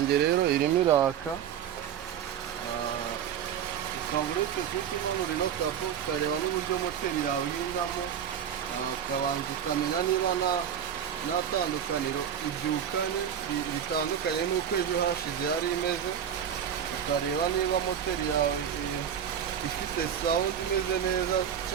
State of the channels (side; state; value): left; quieter; 8.9 dB